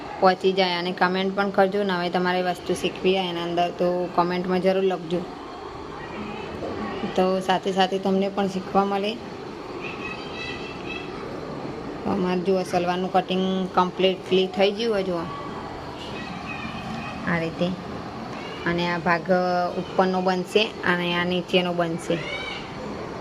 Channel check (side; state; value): both; identical; correlation 1.00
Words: પહોંચી જાય. અને કમેન્ટ પણ કરજો. નવે તમારે વસ્તુ શીખવી હોય એના અંદર તો કમેન્ટમાં જરૂર લખજો, તો સાથે સાથે તમને પણ શીખવા મળે. અમારે જુઓ સલવારનું કટિંગ કમ્પ્લીટલી થઈ ગયું હોય જુઓ આ રીતે. અને આ ભાગ ઉપરનો બનશે અને આ નીચેનો બનશે.